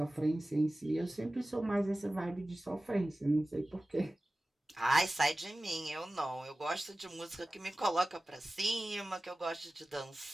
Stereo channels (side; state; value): both; normal; correlation 0.96